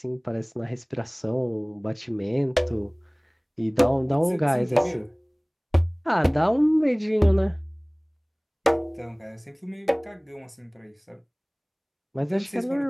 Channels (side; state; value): both; identical; correlation 1.00